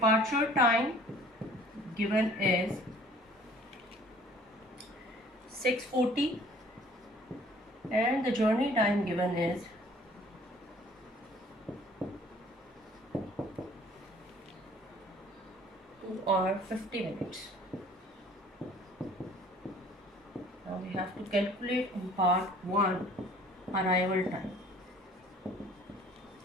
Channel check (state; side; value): normal; both; correlation 0.53